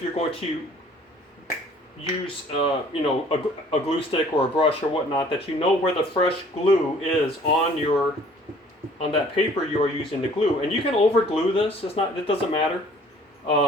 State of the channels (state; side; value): normal; both; correlation 0.54